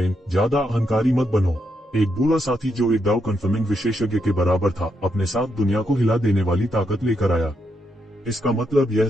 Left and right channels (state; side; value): normal; both; correlation 0.80